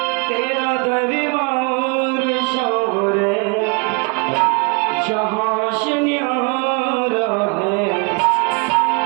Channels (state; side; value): quieter; left; 32.4 dB